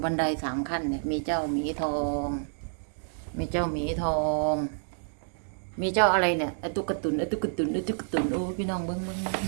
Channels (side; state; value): left; silent; digital silence